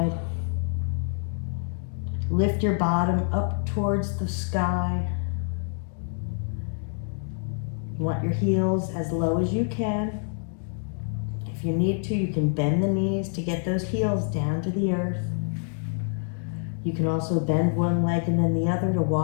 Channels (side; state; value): right; silent; 56 dB below the other